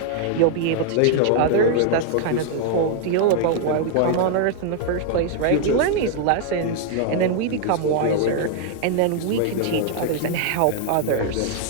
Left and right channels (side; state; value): both; different; correlation 0.00